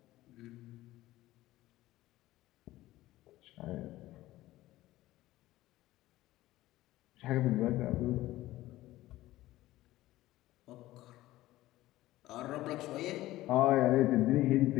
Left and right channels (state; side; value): quieter; right; 16.4 dB